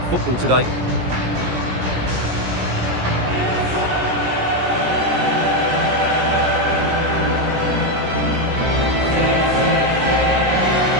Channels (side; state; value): left; late; 17 ms